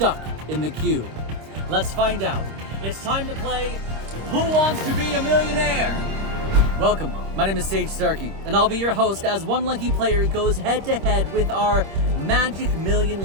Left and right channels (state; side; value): late; left; 26 ms